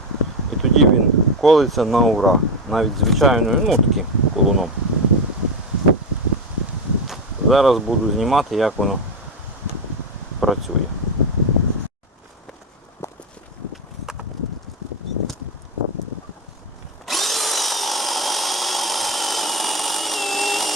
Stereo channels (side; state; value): both; normal; correlation 0.14